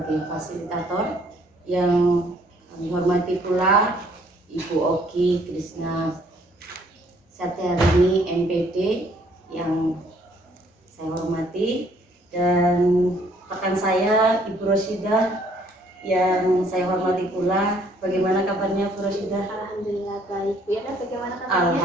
fasilitator. Yang kami hormati pula Ibu Oki Krishna Satyarini, MPD, yang saya hormati, dan rekan saya Ibu Rosidah yang saya hormati pula. Bagaimana kabarnya Bu Rosidah? Alhamdulillah baik. Bu Yana, bagaimana kabarnya?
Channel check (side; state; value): both; normal; correlation 0.63